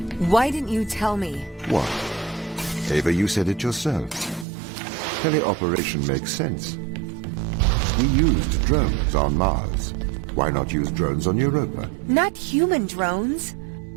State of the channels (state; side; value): drops out; left; at 4.5 s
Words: Why didn't you tell me? What? Ava, you said it yourself. Teleoperation makes sense. We used drones on Mars. Why not use drones on Europa? Not human drones.